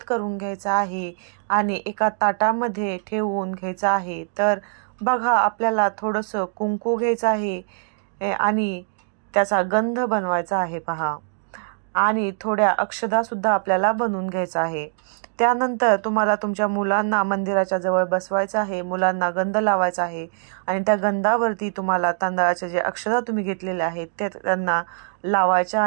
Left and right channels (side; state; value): left; silent; digital silence